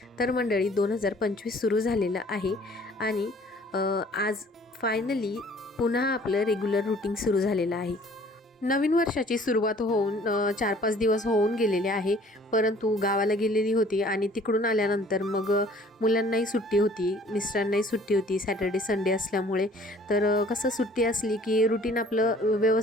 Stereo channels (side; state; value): both; normal; correlation 0.54